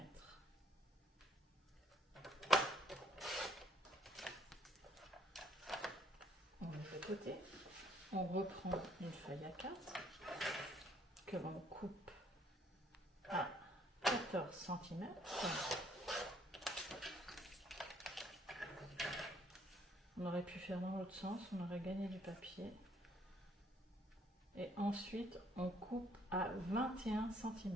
On met de côté. On reprend une feuille A4 que l'on coupe à 14 cm. On aurait pu faire dans l'autre sens, on aurait gagné du papier. Et ensuite, on coupe à 21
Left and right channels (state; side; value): normal; both; correlation 0.65